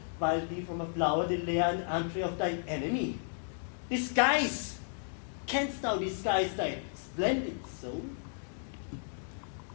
wild bee from a flower, the lair and entry of thy enemy? Disguise! Canst thou disguise thy splendid soul?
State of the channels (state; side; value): silent; right; digital silence